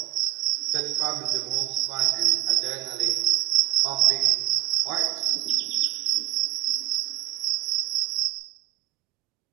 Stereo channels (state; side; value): quieter; left; 16.4 dB